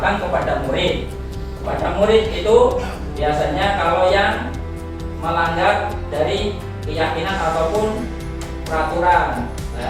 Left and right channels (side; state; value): both; identical; correlation 1.00